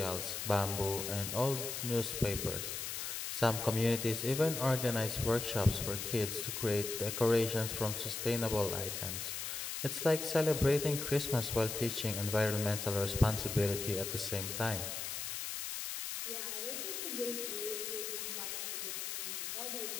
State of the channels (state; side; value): noise; left; hiss, 4 dB below the sound